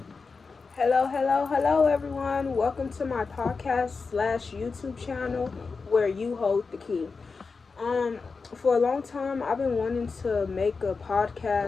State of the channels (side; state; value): right; quieter; 4.6 dB